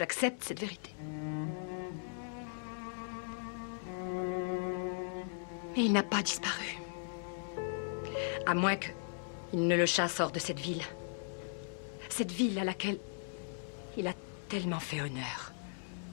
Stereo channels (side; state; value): right; silent; digital silence